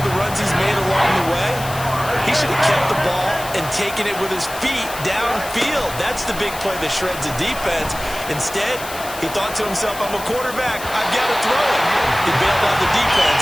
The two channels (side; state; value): left; noise; hiss, 12 dB below the sound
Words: of the runs he's made along the way, he should have kept the ball and taken it with his feet downfield. That's the big play that shreds the defense. Instead, he thought to himself, I'm a quarterback. I've got to throw it. He bailed out the defense